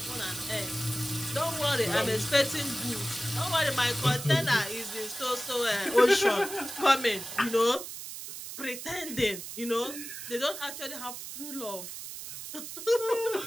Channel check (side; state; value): right; noise; hiss, 9 dB below the sound